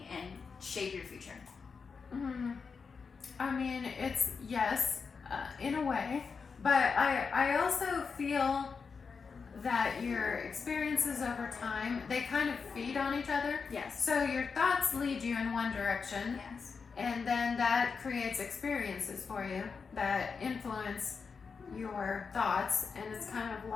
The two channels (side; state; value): right; quieter; 5.4 dB